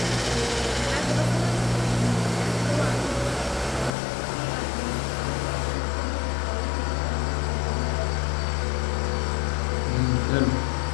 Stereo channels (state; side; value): drops out; right; at 3.9 s